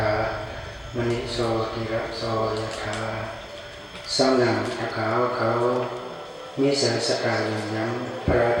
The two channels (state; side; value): identical; both; correlation 1.00